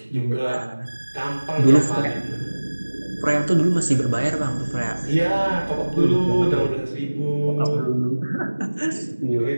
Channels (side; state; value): both; inverted; correlation -1.00